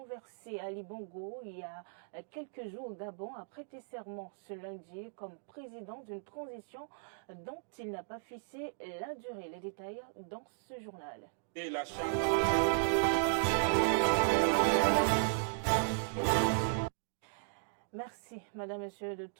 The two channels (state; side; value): silent; left; digital silence